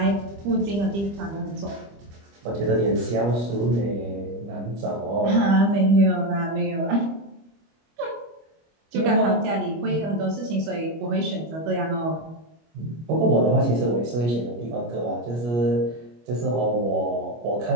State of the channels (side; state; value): left; late; 25 ms